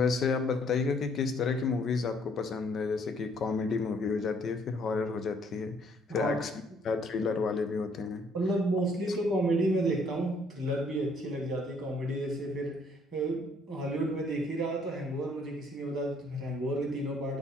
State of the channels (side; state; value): both; normal; correlation 0.64